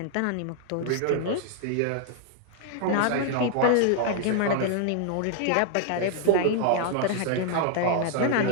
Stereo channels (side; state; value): both; different; correlation 0.00